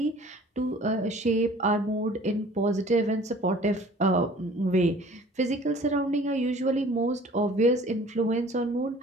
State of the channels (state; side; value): normal; both; correlation 0.49